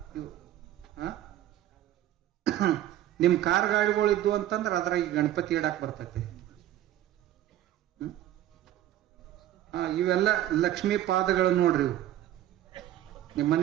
ಇವು. ನಿಮ್ ಕಾರ್ ಗಾಡಿಗಳು ಇದ್ವು ಅಂತಂದ್ರೆ ಅದ್ರಾಗ ಗಣಪತಿ ಇಡಾಕ್ ಬರ್ತೈತಿ. ಇವೆಲ್ಲ ಲಕ್ಷ್ಮೀ ಪಾದಗಳು ನೋಡ್ರಿ. ಇವು ನಿಮ್ಮ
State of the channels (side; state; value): left; quieter; 12.8 dB